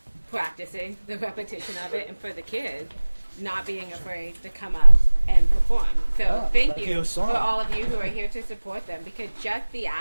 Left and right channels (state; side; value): inverted; both; correlation -1.00